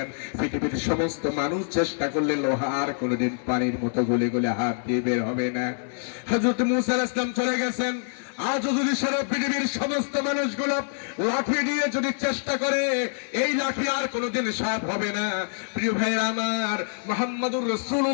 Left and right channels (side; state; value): right; silent; 57 dB below the other